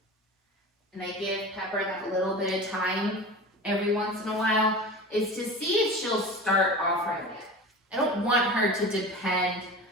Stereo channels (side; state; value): both; normal; correlation 0.33